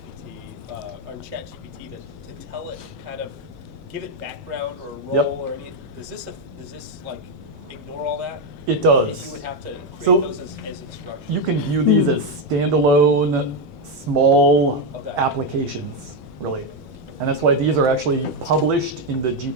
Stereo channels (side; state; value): both; normal; correlation 0.06